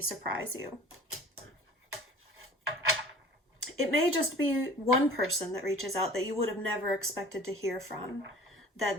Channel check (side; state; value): both; normal; correlation 0.45